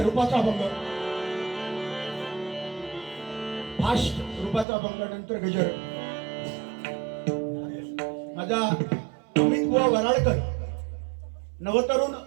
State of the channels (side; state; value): left; drops out; at 4.7 s